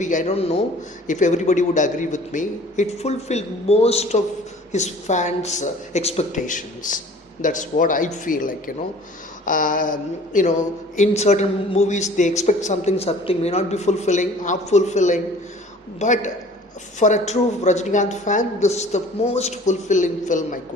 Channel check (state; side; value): normal; both; correlation 0.48